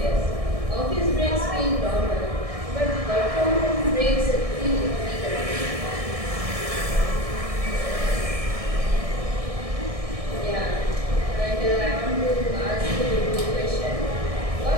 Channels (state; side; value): late; left; 1.6 ms